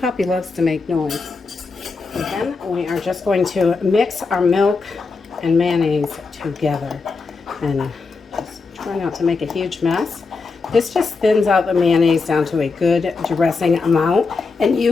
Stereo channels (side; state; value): right; quieter; 4.3 dB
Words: loves to make noise. And then we are just going to mix our milk and mayonnaise together, and just try not to make a huge mess. This just thins out the mayonnaise down to a good dressing amount, and